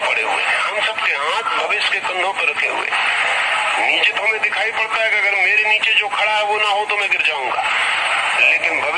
पड़े हुए हैं, हम सबके हाथ भविष्य के कंधों पर रखे हुए हैं। नीचे तो हमें दिखाई पड़ता है कि अगर मेरे नीचे जो खड़ा है वो ना हो तो मैं गिर जाऊंगा, लेकिन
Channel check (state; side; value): identical; both; correlation 1.00